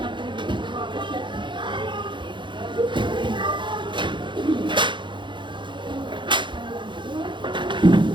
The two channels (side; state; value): left; late; 0.23 ms